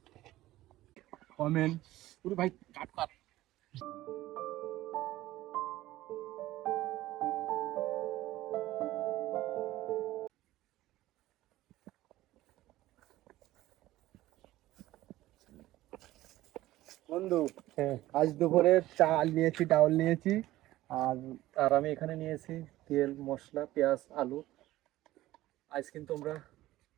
কমেন্ট পুরো ভাই, কাট কাট। বন্ধু, আজ দুপুরে চাল নিয়েছি, ডাউল নিয়েছি, আর আর আমি এখানে নিয়েছি তেল, মশলা, পেঁয়াজ, আলু। আজ কিন্তু আমরা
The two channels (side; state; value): left; quieter; 16.0 dB